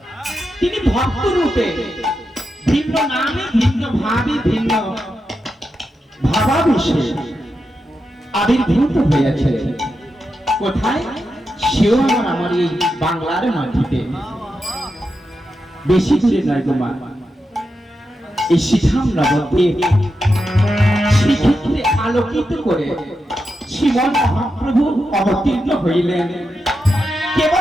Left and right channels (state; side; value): normal; both; correlation 0.88